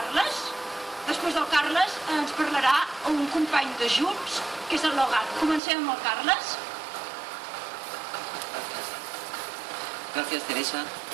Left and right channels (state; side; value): drops out; left; at 5.6 s